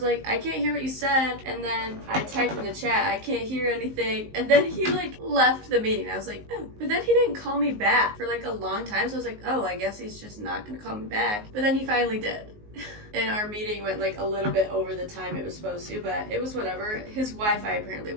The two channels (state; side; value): late; left; 19 ms